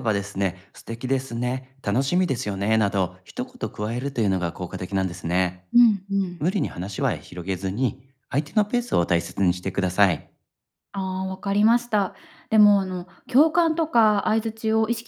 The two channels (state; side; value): identical; both; correlation 1.00